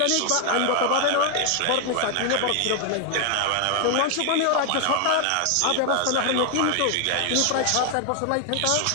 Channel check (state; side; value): different; both; correlation 0.00